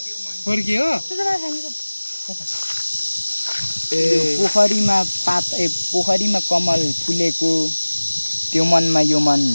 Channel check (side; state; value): both; inverted; correlation -1.00